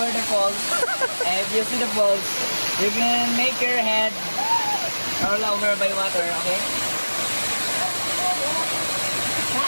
the falls. And if you see the falls, you can make your head roll over by water, okay?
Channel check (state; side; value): inverted; both; correlation -1.00